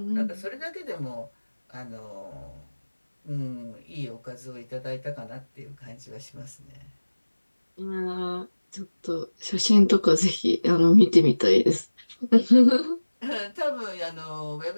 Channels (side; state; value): both; inverted; correlation -1.00